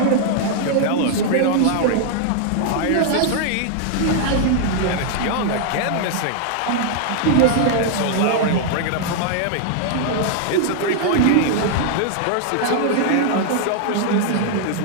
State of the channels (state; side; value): different; both; correlation -0.01